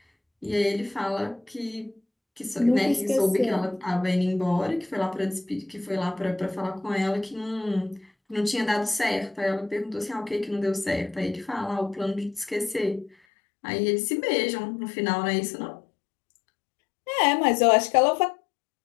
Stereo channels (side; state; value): right; drops out; at 13.2 s